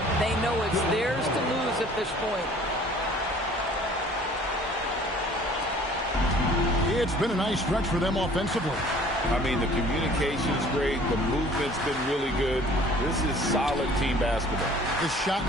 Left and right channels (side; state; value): both; normal; correlation 0.52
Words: They know it's theirs to lose at this point. It's been a nice stretch for them offensively. I mean, the communication is great. The movement's been really good. This is solid team basketball. The shot